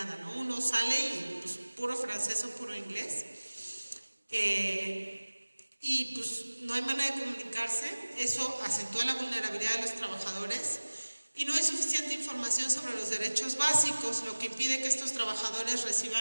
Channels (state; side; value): inverted; both; correlation -1.00